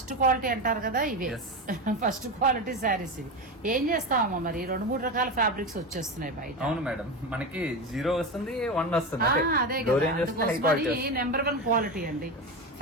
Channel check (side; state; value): both; normal; correlation 0.20